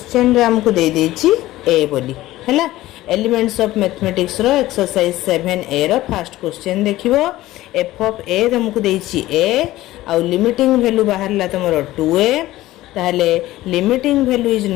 रे हमकु देई देछि a बोली हैला। एलिमेंट्स ऑफ मैथमेटिक्स रो एक्सरसाइज 7A रो फर्स्ट क्वेश्चन देखिवो f ऑफ a हमकु देछि a आ लिमिटिंग वैल्यू बाहरला तमरो 2a ताले limiting value is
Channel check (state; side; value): quieter; right; 16.4 dB